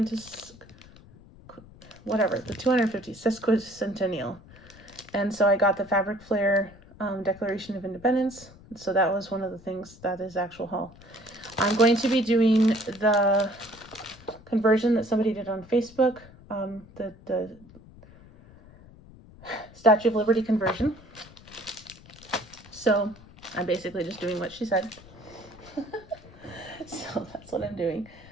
the 250 sesquicentennial. And so I got the Fabric Flair Declaration of Independence. So that was one of the things that is actual haul. I'm going to be doing the conversion that somebody did on Facebook, the Statue of Liberty conversion. So I'm basically just doing what she said. So that's what I'm doing.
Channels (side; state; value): left; noise; rumble, 22 dB below the sound